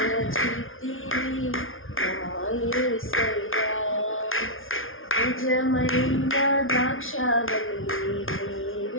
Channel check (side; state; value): right; late; 0.59 ms